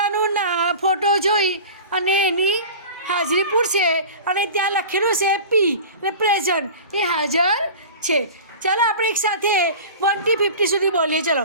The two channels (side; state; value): both; inverted; correlation -0.36